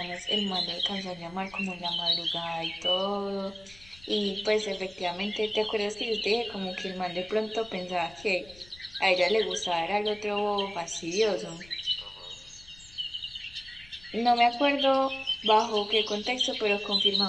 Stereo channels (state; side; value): noise; left; rumble, 23 dB below the sound